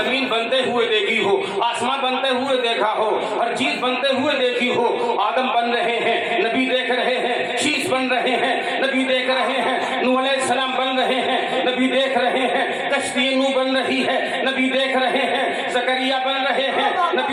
बनते हुए देखी हो, आसमान बनते हुए देखा हो, हर चीज बनते हुए देखी हो। आदम बन रहे हैं, नबी देख रहे हैं। शीश बन रहे हैं, नबी देख रहे हैं। नूह अलैहिस्सलाम बन रहे हैं, नबी देख रहे हैं। कश्ती नूह बन रही है, नबी देख रहे हैं। ज़करिया बन रहे हैं,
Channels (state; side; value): identical; both; correlation 1.00